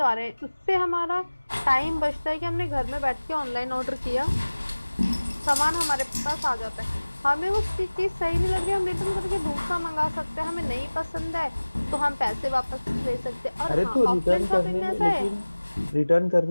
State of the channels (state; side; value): inverted; both; correlation -1.00